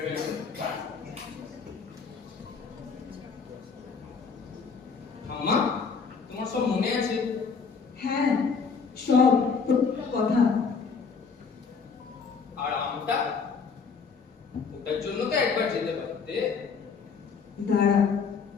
past. ঠাম্মা তোমার সব মনে আছে? হ্যাঁ সব প্রত্যেকটা কথা। আর আমটা ওটার জন্য তো একবার যেতে পারতে। দাঁড়া,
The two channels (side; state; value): right; quieter; 5.4 dB